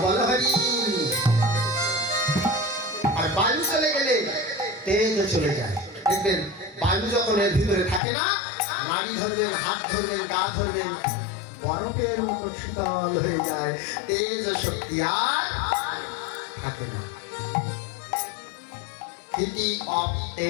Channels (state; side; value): drops out; right; at 8.0 s